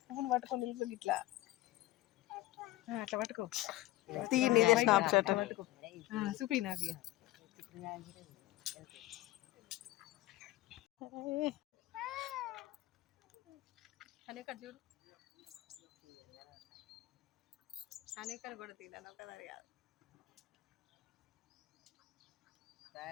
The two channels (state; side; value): quieter; right; 17.3 dB